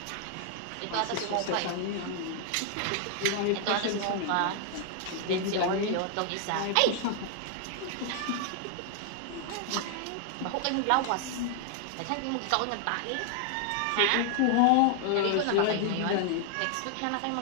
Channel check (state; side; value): different; both; correlation 0.00